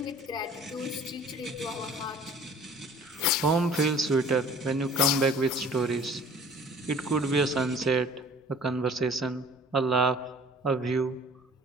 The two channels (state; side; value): normal; both; correlation 0.50